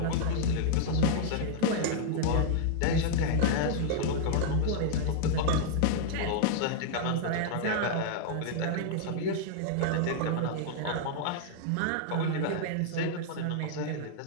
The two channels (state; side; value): different; both; correlation -0.01